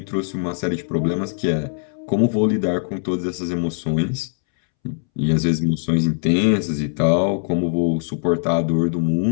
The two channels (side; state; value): right; silent; 65 dB below the other